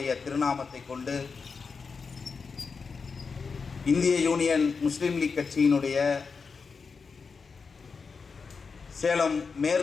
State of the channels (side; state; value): right; quieter; 5.1 dB